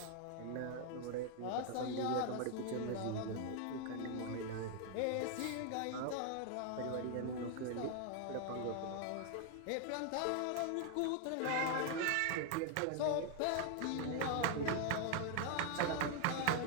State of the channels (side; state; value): both; different; correlation 0.00